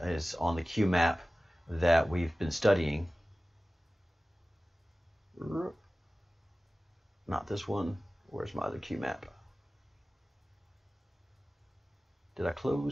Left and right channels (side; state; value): both; normal; correlation 0.96